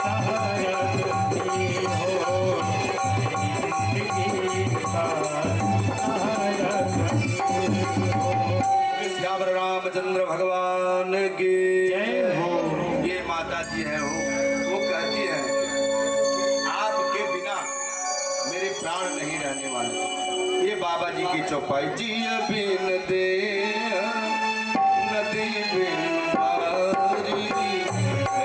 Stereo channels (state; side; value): identical; both; correlation 1.00